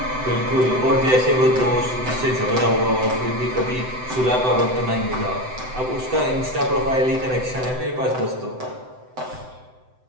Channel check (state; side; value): late; left; 7.9 ms